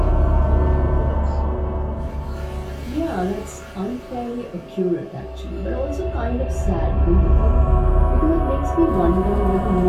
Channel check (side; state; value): both; identical; correlation 1.00